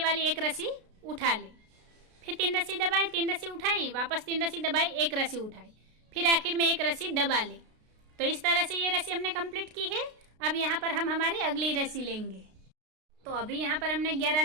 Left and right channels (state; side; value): late; left; 33 ms